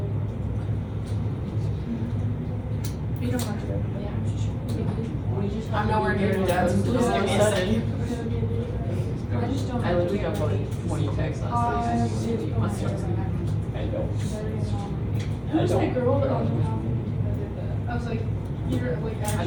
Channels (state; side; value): identical; both; correlation 1.00